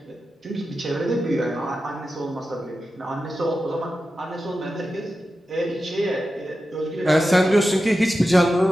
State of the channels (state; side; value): normal; both; correlation 0.92